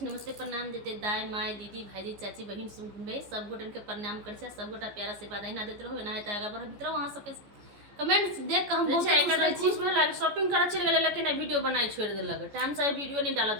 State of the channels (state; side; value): late; left; 14 ms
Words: नमस्ते प्रणाम देते दाई माय दीदी भाईजी चाची बहन सुन भाई सब गोटन के प्रणाम कर छी। सब गोटा प्यारा से बात ना देते रहो ना है आगा बढ़त रहो। वहां सबके कमेंट्स देख के हम बहुत खुश रह छी। खुश भेल, शॉपिंग करे चल गेल लेकिन वीडियो बनाई छोड़ देलक, टाइम से वीडियो नहीं डाला